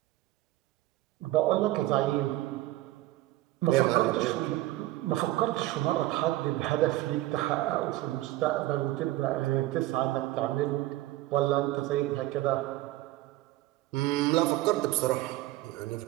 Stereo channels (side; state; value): left; quieter; 16.8 dB